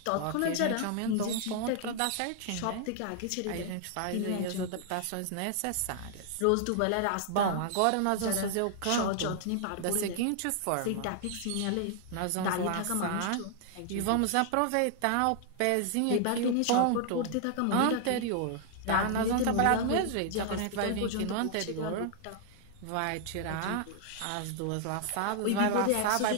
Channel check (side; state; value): both; different; correlation 0.00